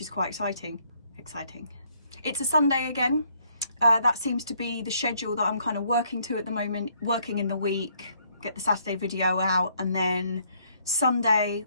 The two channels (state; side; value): inverted; both; correlation -0.68